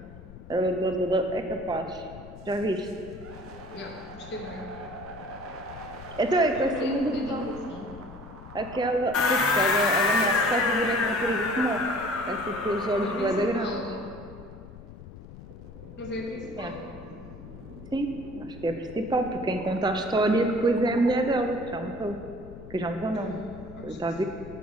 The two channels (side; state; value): left; noise; rumble, 16 dB below the sound